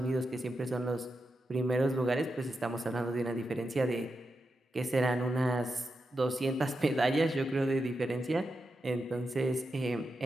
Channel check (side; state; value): both; normal; correlation 0.88